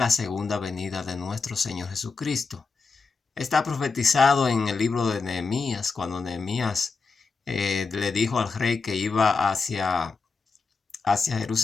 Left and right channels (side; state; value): right; quieter; 4.5 dB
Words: segunda venida de nuestro Señor Jesucristo. Está profetizado en el libro de Nehemías, cuando Nehemías le dijo al rey que iba hacia